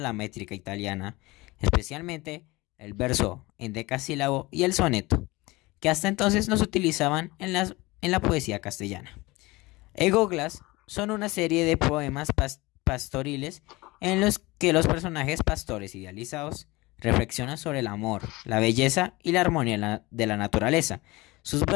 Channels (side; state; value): right; quieter; 22.0 dB